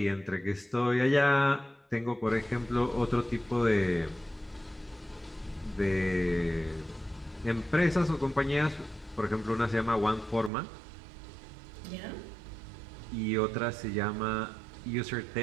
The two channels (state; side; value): drops out; left; at 10.5 s